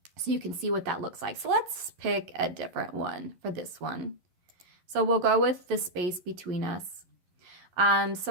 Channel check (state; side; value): late; left; 11 ms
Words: so you can see what that looks like. So let's pick a different one for this one. So we'll go with The Space Between Us.